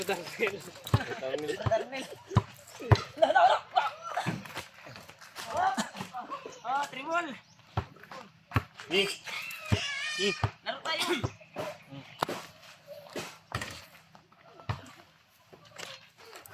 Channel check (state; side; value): identical; both; correlation 1.00